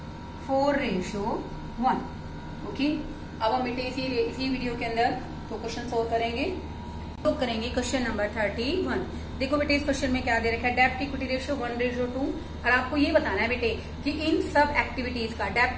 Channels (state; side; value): identical; both; correlation 1.00